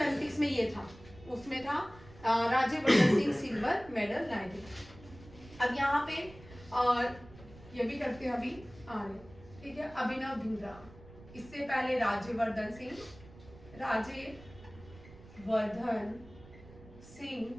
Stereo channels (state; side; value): noise; right; rumble, 20 dB below the sound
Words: में ये था, उसमें था राज्यवर्धन सिंह सिल्वर मेडल लाए थे। अब यहाँ पे ये भी करते हैं अभी ठीक है। अभिनव बिंद्रा, इससे पहले राज्यवर्धन सिंह